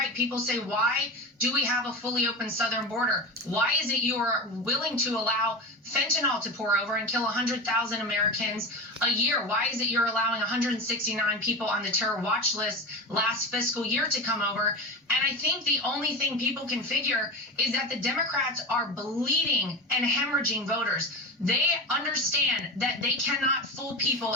People say, why do we have a fully open southern border? Why is it you are willing to allow fentanyl to pour over and kill 100,000 Americans a year? Why is it you're allowing 169 people on the terror watch list last fiscal year to come over? And I think the only thing people can figure is that the Democrats are bleeding and hemorrhaging voters. They understand that they cannot fool people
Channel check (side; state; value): both; normal; correlation 0.24